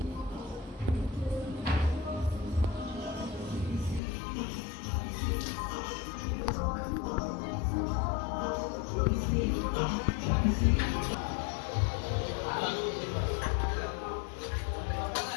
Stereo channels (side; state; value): right; drops out; at 4.0 s